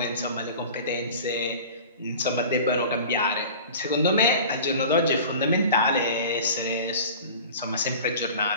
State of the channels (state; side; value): inverted; both; correlation -0.39